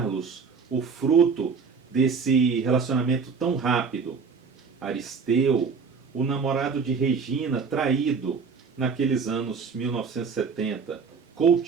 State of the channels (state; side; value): quieter; left; 5.4 dB